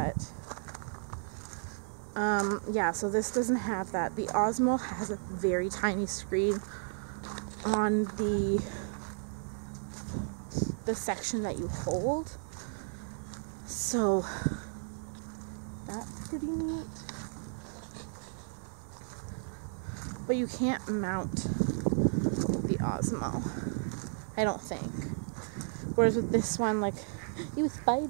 yeah, so this doesn't have that. The Osmo has a very tiny screen on the section that you hold, so that's pretty neat. But you can't mount the Osmo, I don't think. Whereas with this one, like, you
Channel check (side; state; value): left; silent; 55 dB below the other